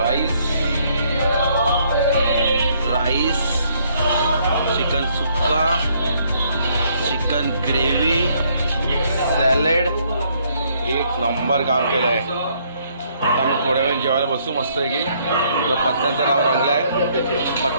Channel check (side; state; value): both; inverted; correlation -0.68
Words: राईस चिकन सुक्का चिकन ग्रेव्ही सॅलड एक नंबर काम केलं आहे. आता आम्ही थोड्या वेळ जेवायला बसू मस्त आहे की तर पत्त्यांचा डाव रंगलाय.